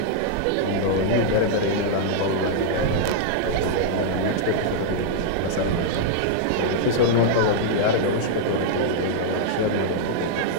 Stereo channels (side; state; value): both; different; correlation -0.01